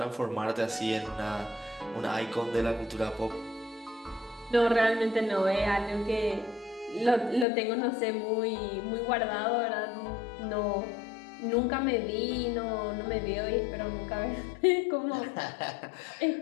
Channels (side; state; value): right; drops out; at 7.5 s